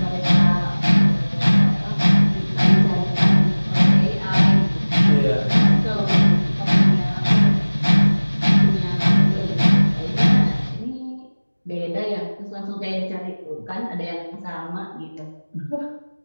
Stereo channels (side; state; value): both; inverted; correlation -1.00